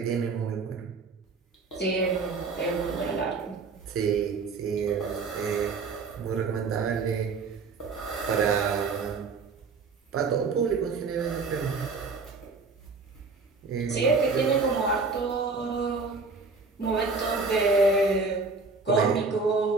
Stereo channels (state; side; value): quieter; left; 4.3 dB